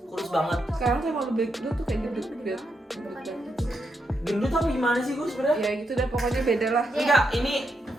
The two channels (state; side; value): normal; both; correlation 0.82